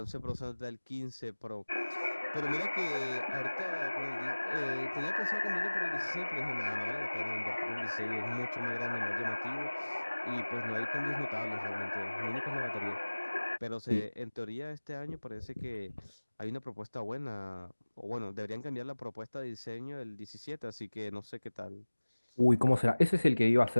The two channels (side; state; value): both; inverted; correlation -1.00